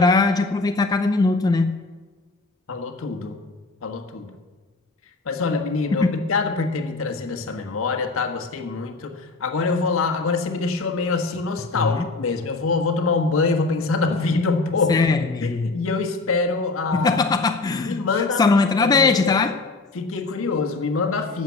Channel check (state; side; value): quieter; right; 3.6 dB